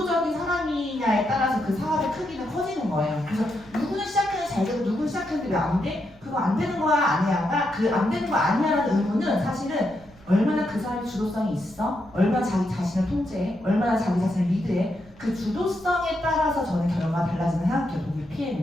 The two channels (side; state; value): right; noise; rumble, 25 dB below the sound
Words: 사람이냐에 따라서 그 사업의 크기는 커지는 거예요. 그래서 누구는 시작했는데 잘 되고 누구는 시작했는데 왜 안 돼? 그거 안 되는 거야 아니야가 그 안 되는 거 아니야라는 의무는 사실은 얼마나 그 사람이 주도성이 있어? 얼마나 자기 자신을 통제해? 얼마나 자기 자신을 리드해? 그 주도성에 따라서 저는 결과가 달라지는 생각해요. 독일